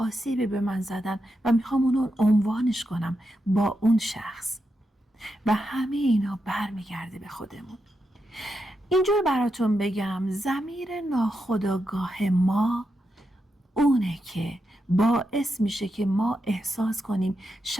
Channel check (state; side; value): normal; both; correlation 0.86